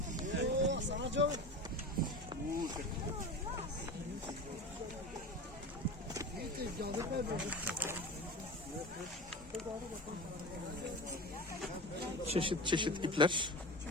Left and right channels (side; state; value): both; normal; correlation 0.30